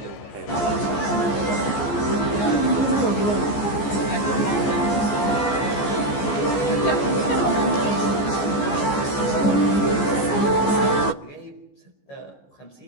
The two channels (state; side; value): late; right; 14 ms